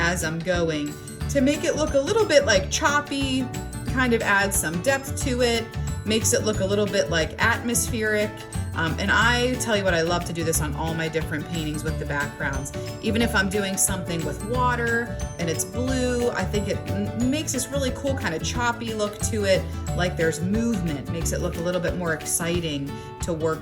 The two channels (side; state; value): both; identical; correlation 1.00